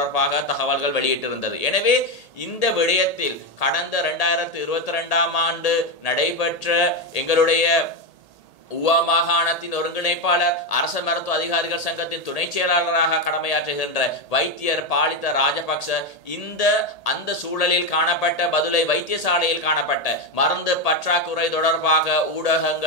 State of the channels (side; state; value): right; late; 1.8 ms